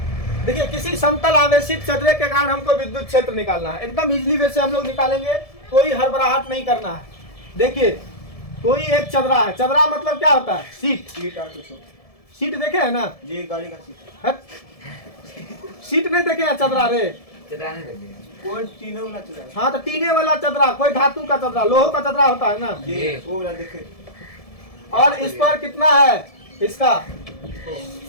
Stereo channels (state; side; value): late; right; 1.7 ms